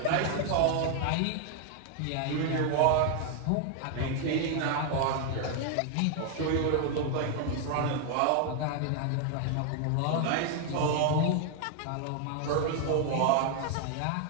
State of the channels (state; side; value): different; both; correlation 0.00